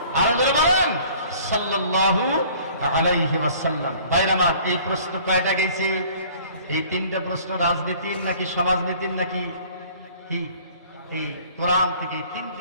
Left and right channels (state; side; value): inverted; both; correlation -0.52